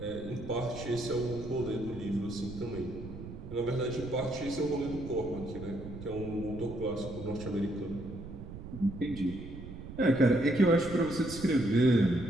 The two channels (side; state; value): right; noise; rumble, 11 dB below the sound